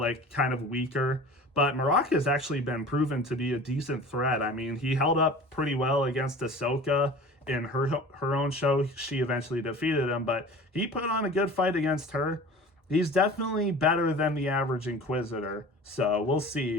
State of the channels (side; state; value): both; normal; correlation 0.40